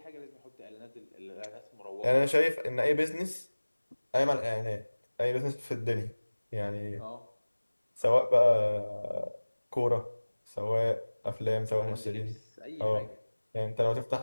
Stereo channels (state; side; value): inverted; both; correlation -1.00